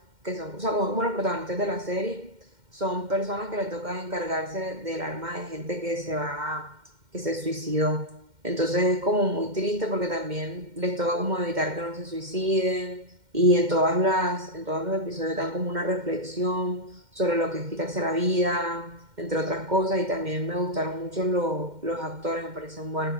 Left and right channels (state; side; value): late; left; 2.1 ms